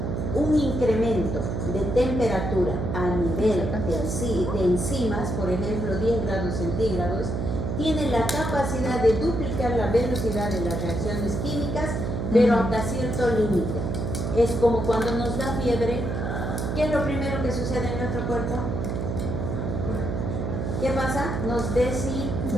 Un incremento de temperatura a nivel de enzimas, por ejemplo 10 grados centígrados, tiene la capacidad de duplicar la velocidad de las reacciones químicas, pero hasta cierto límite. Es como cuando nos da fiebre, ¿qué es lo primero que sucede en nuestro cuerpo? ¿Qué pasa? Nos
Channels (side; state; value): right; noise; hum, 2 dB below the sound